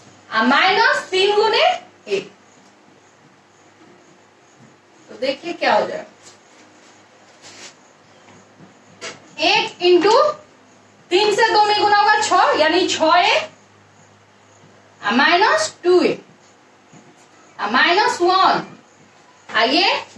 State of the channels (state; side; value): identical; both; correlation 1.00